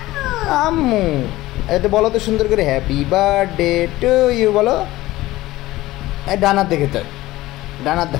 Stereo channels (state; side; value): quieter; right; 17.4 dB